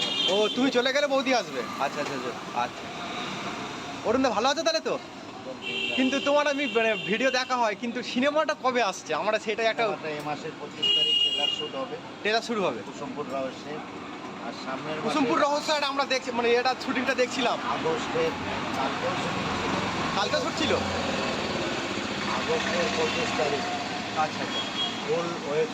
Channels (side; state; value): both; identical; correlation 1.00